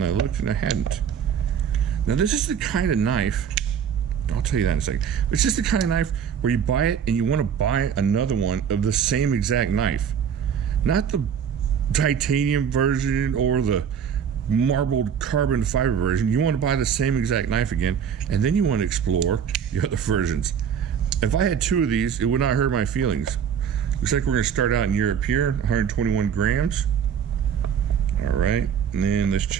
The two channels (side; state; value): left; quieter; 7.8 dB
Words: I looked and I hadn't. Now this is the kind of knife, I'll tell you that in a second. It's just the kind of knife where you buy it and you want to buy another one of the same exact knife. Not the titanium version or the marbled carbon fiber version. You want to buy the same exact knife again, and then you want to explore the other versions. If I had two of these, it would not hurt my feelings. Looks like we're going to start out in Europe here, 121 grams. All right, and then let's